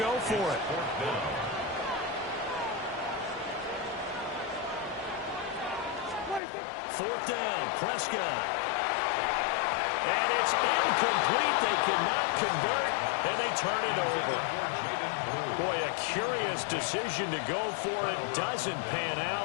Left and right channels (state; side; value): drops out; right; at 6.4 s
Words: go for it. Fourth down, Prescott. And it's incomplete. They cannot convert, and they turn it over. Boy, a curious decision to go for it. Doesn't pan